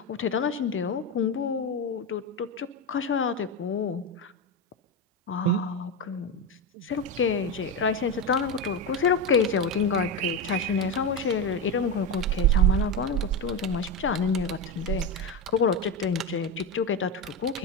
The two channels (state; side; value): normal; both; correlation 0.15